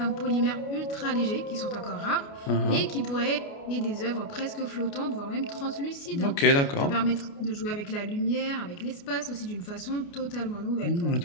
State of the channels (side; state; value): right; late; 29 ms